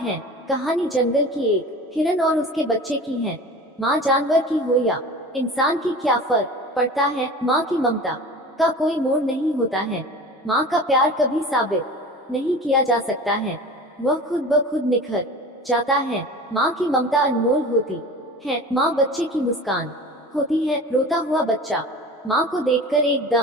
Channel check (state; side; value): normal; both; correlation 0.37